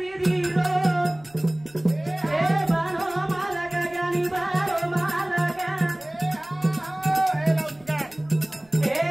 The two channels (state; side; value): noise; right; rumble, 29 dB below the sound